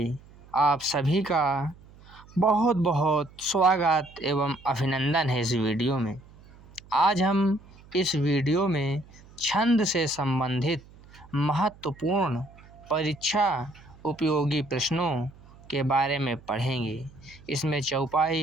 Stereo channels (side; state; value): right; noise; hum, 23 dB below the sound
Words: आप सभी का बहुत बहुत स्वागत एवं अभिनंदन है इस वीडियो में। आज हम इस वीडियो में छंद से संबंधित महत्वपूर्ण परीक्षा उपयोगी प्रश्नों के बारे में पढ़ेंगे। इसमें चौपाई,